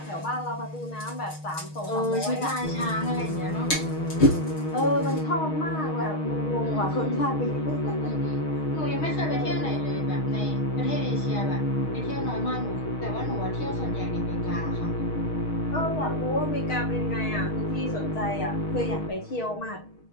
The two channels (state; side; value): late; right; 6.4 ms